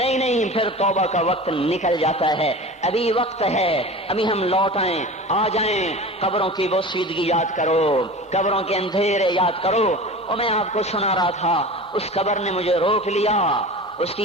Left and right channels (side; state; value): both; normal; correlation 0.35